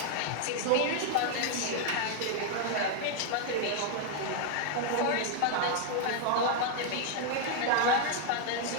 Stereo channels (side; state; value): both; different; correlation 0.00